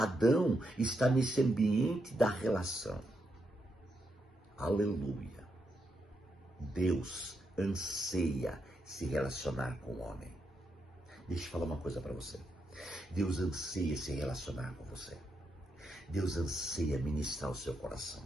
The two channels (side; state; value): both; normal; correlation 0.82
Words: está nesse ambiente da relação. Aleluia. Deus anseia se relacionar com o homem. Deixa eu falar uma coisa para você. Deus anseia se relacionar com você. Deus anseia ministrar o seu coração.